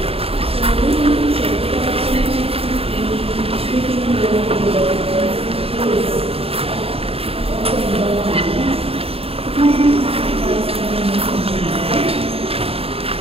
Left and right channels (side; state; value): left; late; 0.28 ms